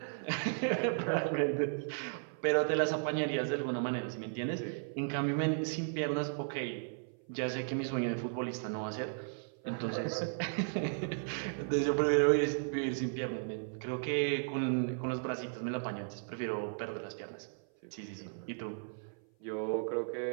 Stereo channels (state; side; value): silent; left; 54 dB below the other